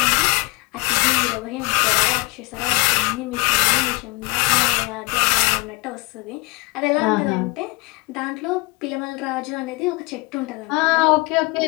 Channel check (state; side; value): quieter; right; 27.3 dB